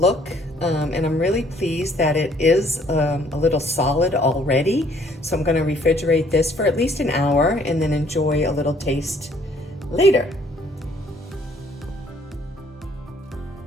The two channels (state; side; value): normal; both; correlation 0.62